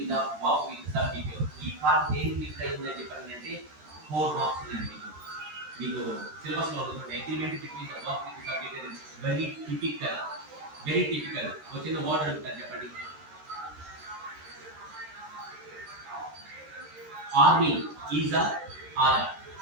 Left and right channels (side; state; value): left; late; 13 ms